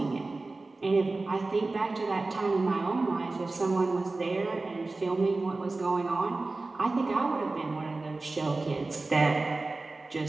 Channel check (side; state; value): left; quieter; 3.4 dB